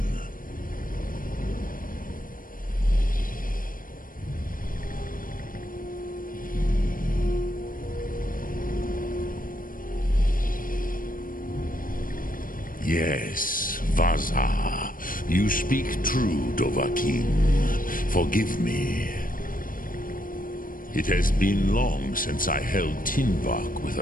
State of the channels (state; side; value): late; right; 0.40 ms